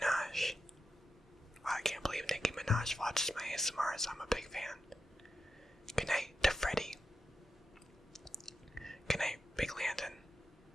Wow, I can't believe Nicki Minaj watches my ASMRs. I'm a big fan. Good night to Freddie. Good night, Big Landon.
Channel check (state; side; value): normal; both; correlation 0.88